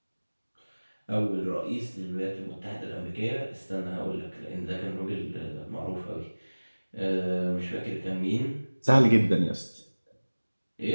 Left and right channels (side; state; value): both; inverted; correlation -1.00